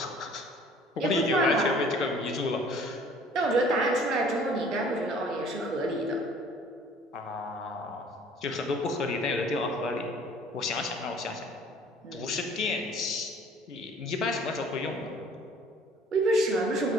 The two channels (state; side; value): normal; both; correlation 0.53